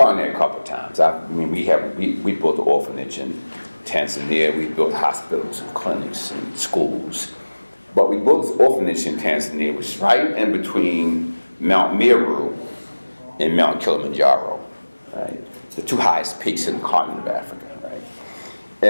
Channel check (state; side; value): inverted; both; correlation -1.00